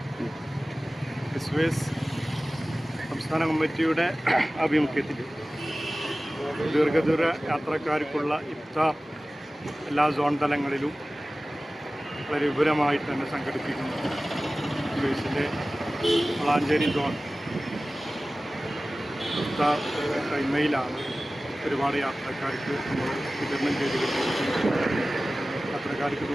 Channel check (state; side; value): normal; both; correlation 0.97